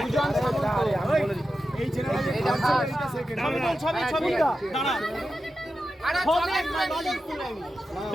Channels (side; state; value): both; normal; correlation 0.91